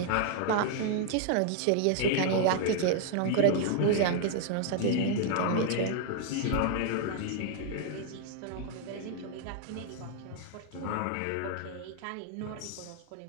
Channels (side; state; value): both; different; correlation 0.00